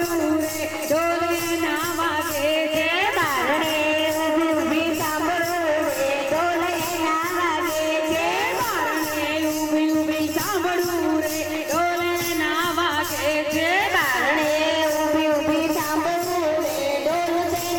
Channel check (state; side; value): identical; both; correlation 1.00